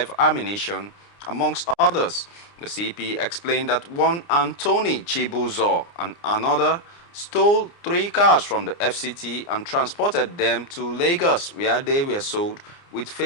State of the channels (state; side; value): late; right; 29 ms